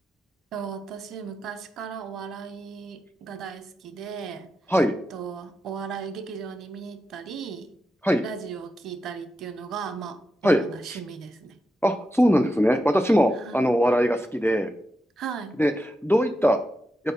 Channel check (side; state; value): both; normal; correlation 0.88